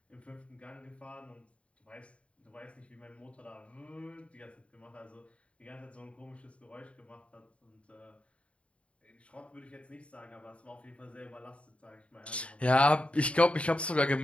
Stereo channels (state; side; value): late; right; 0.061 ms